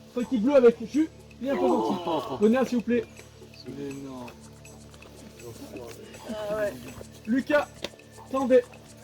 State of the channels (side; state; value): both; identical; correlation 1.00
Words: C'est l'équipe bleue avec Julien Posanti. Venez s'il vous plaît. Lucas, tendez,